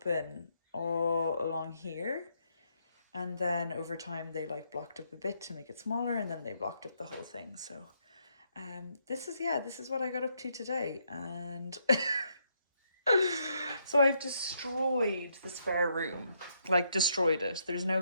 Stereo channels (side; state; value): both; inverted; correlation -0.75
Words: all along here. And then over time they like blocked up a bit to make it smaller and then they blocked up the whole thing. So this is what I got up to today. And so I've destroyed the spare room, like destroyed it. There's